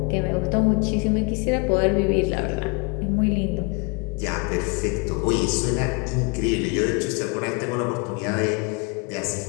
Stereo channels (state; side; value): quieter; right; 31.0 dB